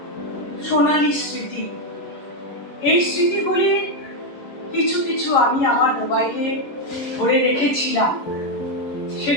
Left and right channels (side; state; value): right; late; 11 ms